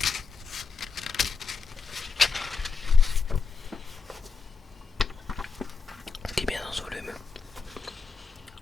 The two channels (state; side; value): quieter; right; 4.9 dB